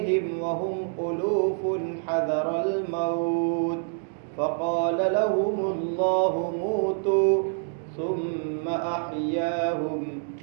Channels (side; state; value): left; silent; 60 dB below the other